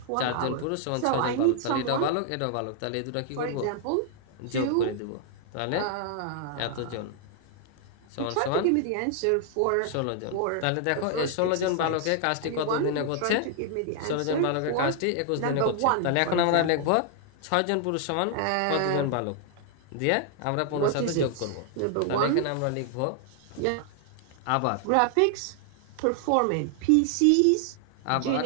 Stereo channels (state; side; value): different; both; correlation 0.00